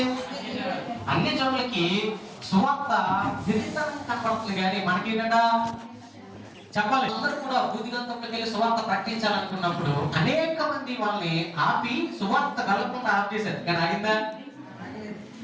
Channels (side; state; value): both; identical; correlation 1.00